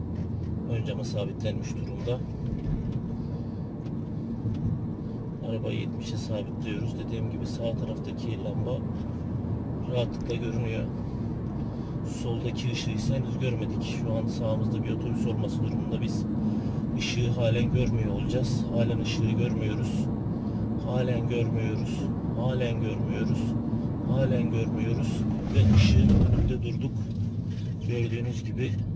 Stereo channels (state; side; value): identical; both; correlation 1.00